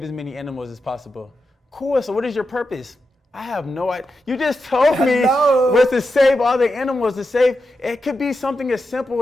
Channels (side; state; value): both; normal; correlation 0.88